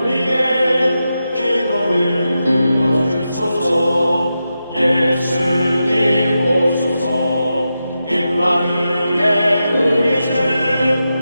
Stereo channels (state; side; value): inverted; both; correlation -0.89